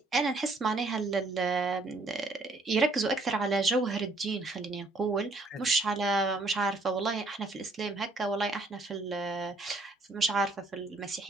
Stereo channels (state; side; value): quieter; left; 3.2 dB